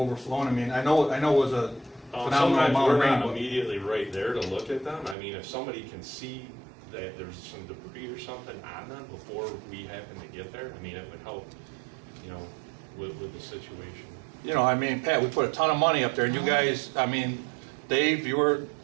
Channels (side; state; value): left; drops out; at 5.2 s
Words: I know it was a phenomenal Sometimes amount of we're rain. not immediately right there to look at them. If somebody can see that there's some debris or something on them before we happen to get there, it would help, with the situation. Pat, we put a ton of money up there, and you guys, Dave, you were,